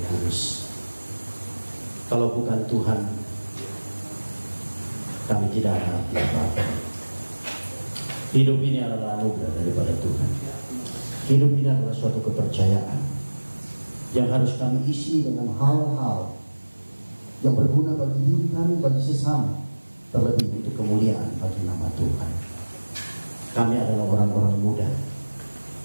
kudus? Kalau bukan Tuhan, kami tidak ada arti apa-apa. Hidup ini adalah anugerah daripada Tuhan. Hidup ini adalah suatu kepercayaan yang harus kami isi dengan hal-hal yang berguna bagi diri kami, bagi sesama, terlebih untuk kemuliaan bagi nama Tuhan. Kami adalah orang-orang muda,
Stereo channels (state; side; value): inverted; both; correlation -1.00